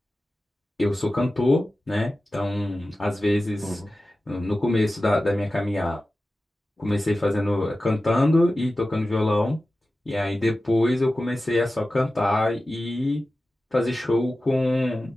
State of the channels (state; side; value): normal; both; correlation 0.95